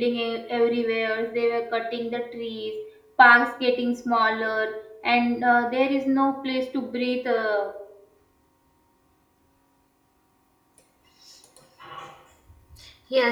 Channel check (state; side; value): identical; both; correlation 1.00